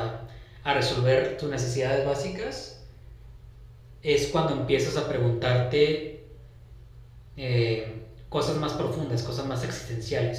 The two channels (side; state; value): both; identical; correlation 1.00